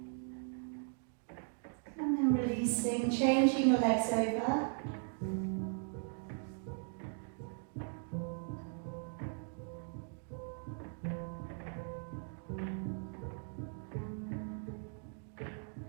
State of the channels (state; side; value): silent; left; 52 dB below the other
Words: Changing your legs over.